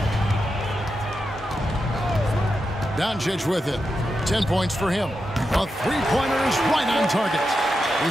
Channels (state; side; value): normal; both; correlation 0.88